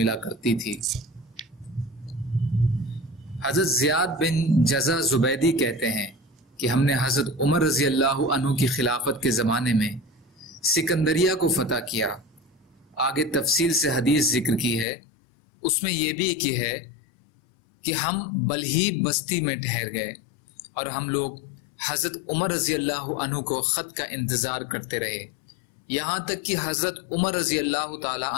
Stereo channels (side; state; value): right; drops out; at 14.9 s